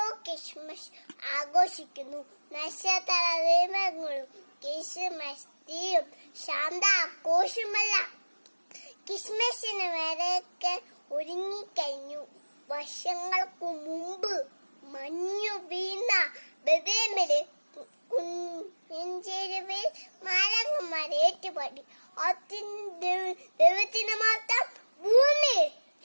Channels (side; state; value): both; inverted; correlation -1.00